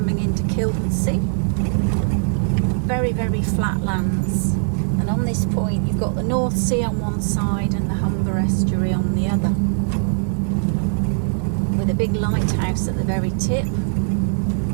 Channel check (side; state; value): left; silent; 65 dB below the other